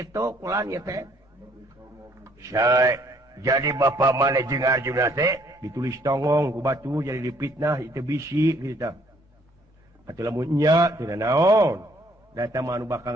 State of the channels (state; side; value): normal; both; correlation 0.64